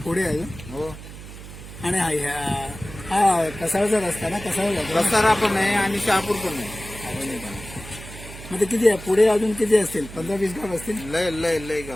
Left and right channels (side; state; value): right; noise; hum, 14 dB below the sound